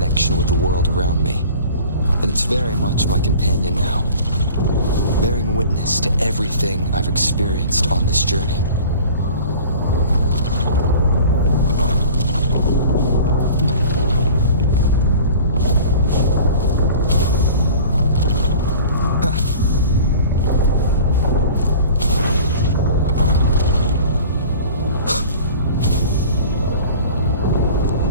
with the world around me, and it's very much my companion now, bearing witness to everything I've experienced on this journey.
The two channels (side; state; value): both; inverted; correlation -0.43